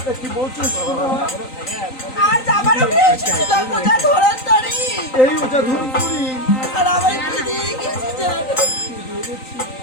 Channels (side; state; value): right; late; 3.9 ms